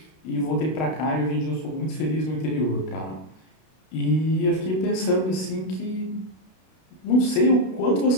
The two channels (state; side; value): late; right; 32 ms